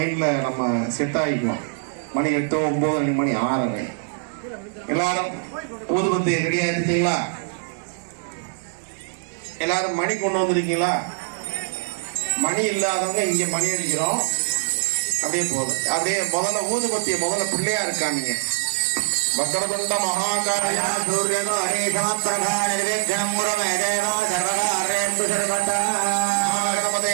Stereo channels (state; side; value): silent; left; 63 dB below the other